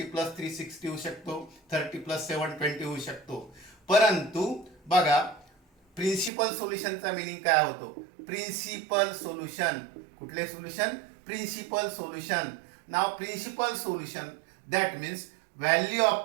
+ 360 होऊ शकतो, 30 + 720 होऊ शकतो. परंतु बघा प्रिन्सिपल सोल्युशनचा मीनिंग काय होतो? Principal solution. कुठले सोल्युशन? Principal solution. नाव principal solution that means value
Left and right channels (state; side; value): drops out; left; at 6.3 s